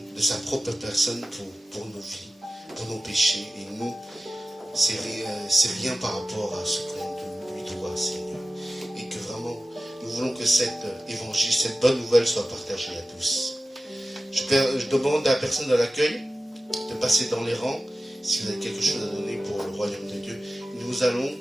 de sa propre personne pour nos vies, pour nos péchés. Et nous, c'est rien par rapport à ce qu'on lui doit, Seigneur. Et que vraiment, nous voulons que cet évangile, cette bonne nouvelle soit partagée à tous. Je demande à la personne de l'accueil de passer dans les rangs, si vous avez quelque chose à donner pour le royaume de Dieu. Nous allons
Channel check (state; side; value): normal; both; correlation 0.94